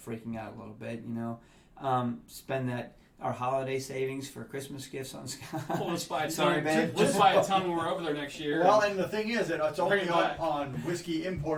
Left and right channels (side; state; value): both; identical; correlation 1.00